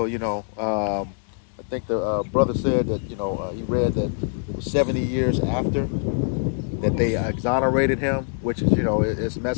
I think the brother said that he read that it was 70 years after that they exonerated him, which is it's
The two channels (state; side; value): silent; right; digital silence